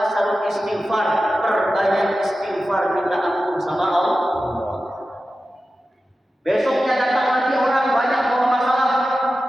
istighfar, perbanyak istighfar, minta ampun sama Allah. Besoknya datang lagi orang banyak bawa masalah,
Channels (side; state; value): both; normal; correlation 0.93